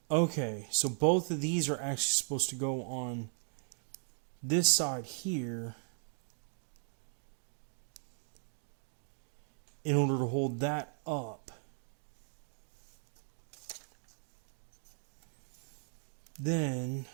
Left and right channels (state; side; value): silent; left; 53 dB below the other